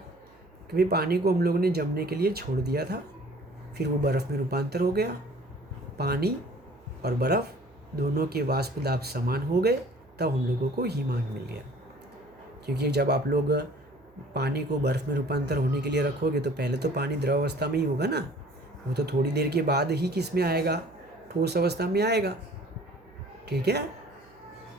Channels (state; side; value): noise; right; hum, 30 dB below the sound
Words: कि भाई पानी को हम लोगों ने जमने के लिए छोड़ दिया था, फिर वो बर्फ़ में रूपांतर हो गया, पानी और बर्फ़ दोनों के वाष्प दाब समान हो गए, तब हम लोगों को हिमांक मिल गया। क्योंकि जब आप लोग पानी को बर्फ़ में रूपांतर होने के लिए रखोगे तो पहले तो पानी द्रव अवस्था में ही होगा ना, वो तो थोड़ी देर के बाद ही किस में आएगा, ठोस अवस्था में आएगा। ठीक है,